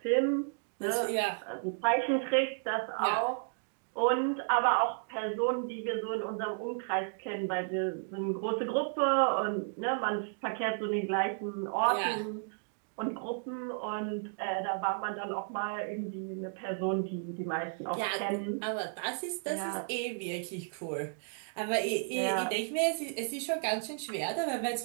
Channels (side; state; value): left; silent; digital silence